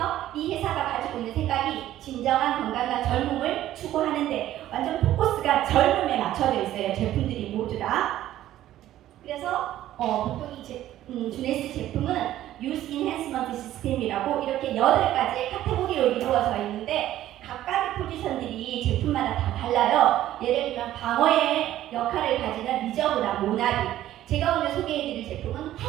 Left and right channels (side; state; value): left; quieter; 13.3 dB